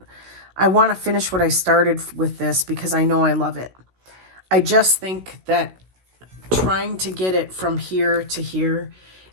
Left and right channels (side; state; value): left; late; 16 ms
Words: to finish what I started with this because I know I love it. I just think that trying to get it from here to here